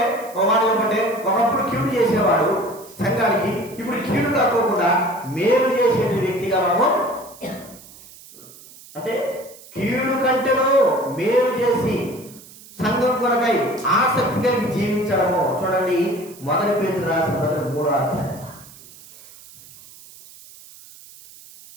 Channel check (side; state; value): right; noise; hiss, 20 dB below the sound